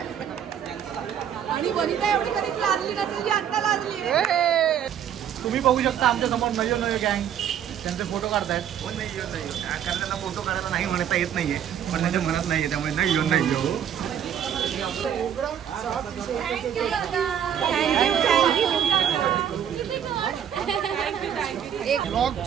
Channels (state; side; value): quieter; left; 9.3 dB